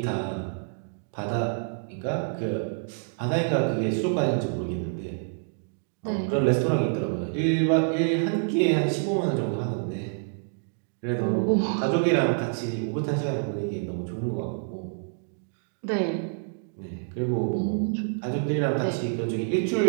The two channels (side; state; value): left; silent; digital silence